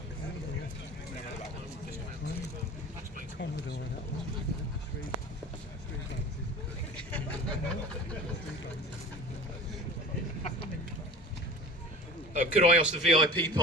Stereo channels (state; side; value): normal; both; correlation 0.37